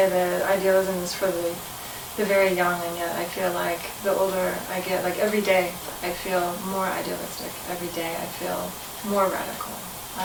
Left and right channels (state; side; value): identical; both; correlation 1.00